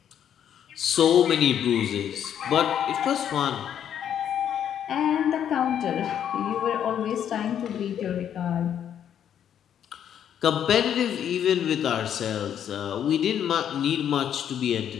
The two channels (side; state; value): right; quieter; 9.4 dB